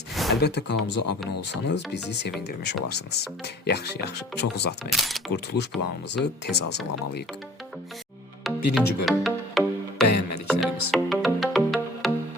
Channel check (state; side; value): normal; both; correlation 0.49